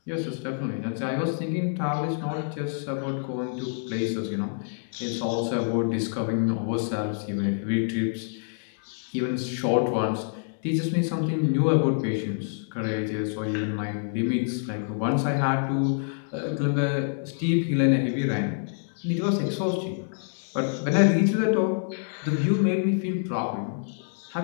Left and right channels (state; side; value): silent; right; digital silence